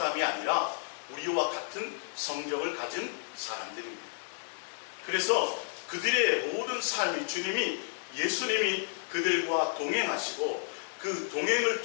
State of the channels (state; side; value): silent; right; digital silence